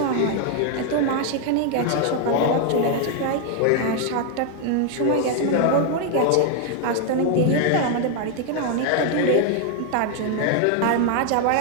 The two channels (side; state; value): both; different; correlation 0.00